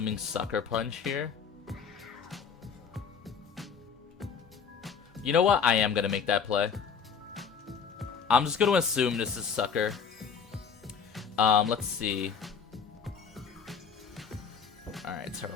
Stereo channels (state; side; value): quieter; right; 6.5 dB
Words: Sucker Punch here. You know what? I am gonna make that play. I'm just gonna assume this is Sucker. Let's see. Alright,